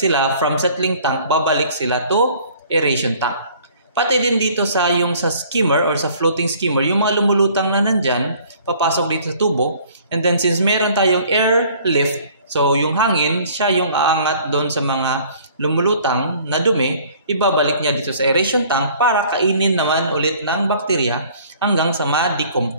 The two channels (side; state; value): both; inverted; correlation -0.54